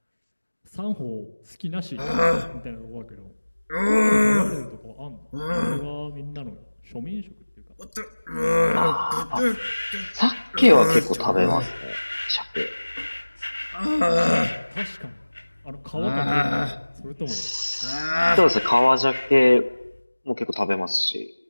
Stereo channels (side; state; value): both; inverted; correlation -1.00